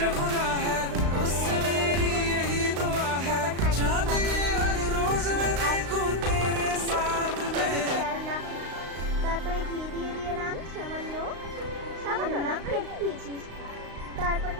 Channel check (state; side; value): late; left; 35 ms